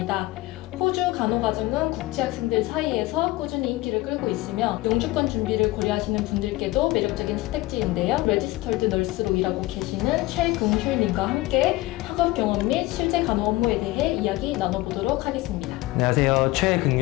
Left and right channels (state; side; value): quieter; right; 18.9 dB